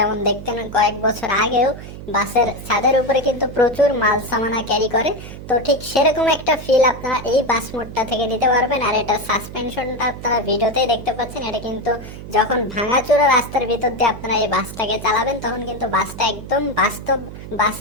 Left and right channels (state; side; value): noise; right; hum, 12 dB below the sound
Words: দেখতেন কয়েক বছর আগেও, বাসের ছাদের উপরে কিন্তু প্রচুর মাল সামানা ক্যারি করে। তো ঠিক সেরকম একটা ফিল আপনারা এই বাস মোডটা থেকে নিতে পারবেন। আর এটা সাসপেনশনটা আপনারা ভিডিওতেই দেখতে পাচ্ছেন। এটা কিন্তু যখন ভাঙাচোরা রাস্তার ভিতর দিয়ে আপনারা এই বাসটাকে চালাবেন, তখন কিন্তু বাসটা একদম বাস্তব